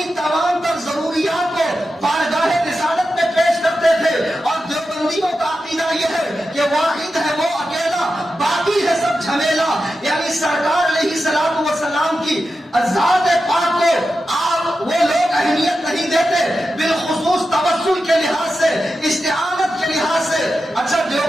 تمام تر ضروریات کو بارگاہ رسالت میں پیش کرتے تھے، اور دیوبندیوں کا عقیدہ یہ ہے کہ واحد ہے وہ اکیلا، باقی ہے سب جھمیلا، یعنی سرکار علیہ الصلوۃ والسلام کی ذات پاک کو آپ وہ لوگ اہمیت نہیں دیتے، بالخصوص توسل کے لحاظ سے، استعانت کے لحاظ سے۔ اچھا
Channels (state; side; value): normal; both; correlation 0.91